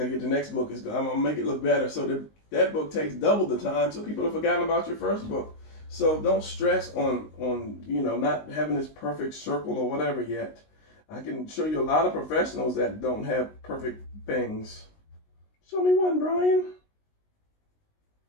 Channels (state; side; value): late; right; 19 ms